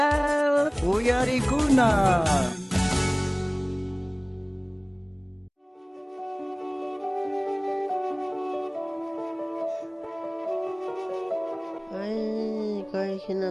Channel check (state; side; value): identical; both; correlation 1.00